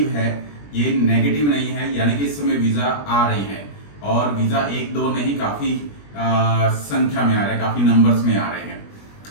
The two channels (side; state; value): right; late; 21 ms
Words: है, ये नेगेटिव नहीं है। यानी कि इस समय वीज़ा आ रही हैं और वीज़ा एक दो नहीं, काफ़ी संख्या में आ रहे हैं, काफ़ी नंबर्स में आ रहे हैं।